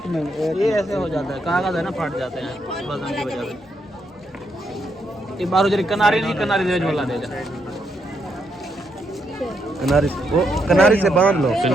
मिनट ये ऐसे हो जाता है, कागज है ना, फट जाते हैं वजन की वजह से। एक बार जरी कनारी नहीं, कनारी देज वाला देगा। कनारी, वो कनारी से बांध लो।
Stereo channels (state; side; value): normal; both; correlation 0.78